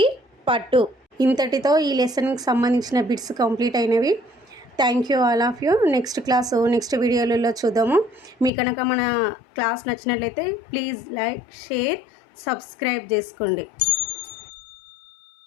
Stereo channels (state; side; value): drops out; right; at 8.5 s